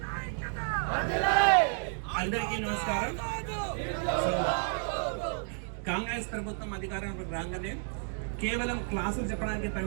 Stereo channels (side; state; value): left; silent; 57 dB below the other